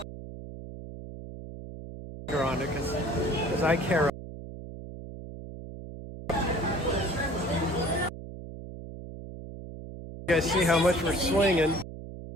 On it because I care. You guys see how much we're swinging.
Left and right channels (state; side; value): noise; right; hum, 12 dB below the sound